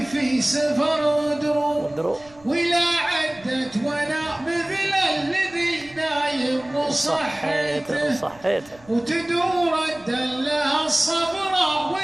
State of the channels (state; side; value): noise; right; rumble, 26 dB below the sound